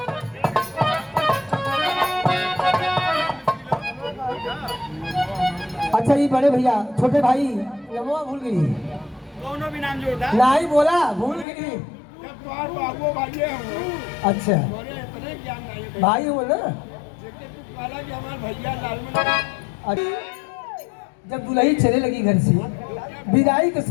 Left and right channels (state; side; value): drops out; right; at 11.5 s